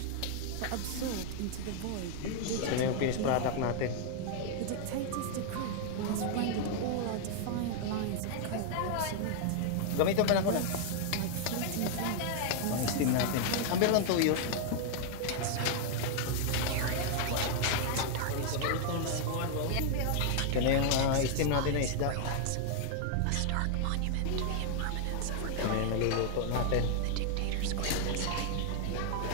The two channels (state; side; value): different; both; correlation 0.00